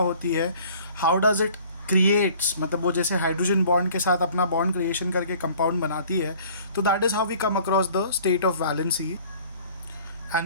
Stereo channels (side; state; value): both; inverted; correlation -0.51